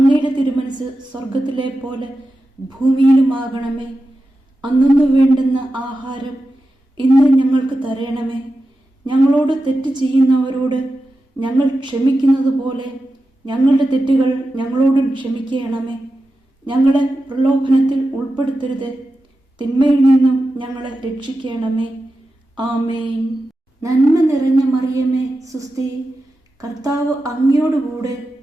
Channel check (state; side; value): normal; both; correlation 0.91